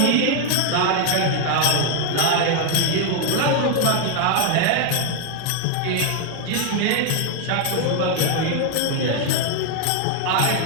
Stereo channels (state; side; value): different; both; correlation 0.00